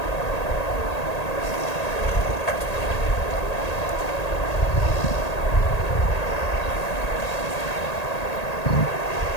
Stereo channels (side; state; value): right; late; 1.8 ms